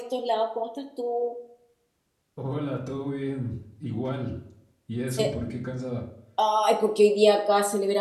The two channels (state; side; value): identical; both; correlation 1.00